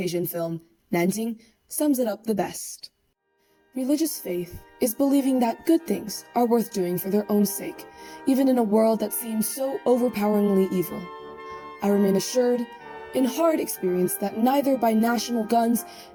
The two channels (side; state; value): both; identical; correlation 1.00